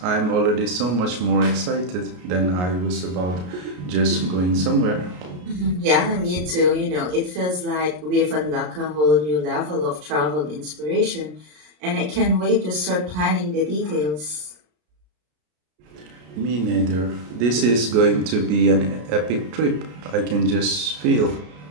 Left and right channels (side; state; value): left; late; 33 ms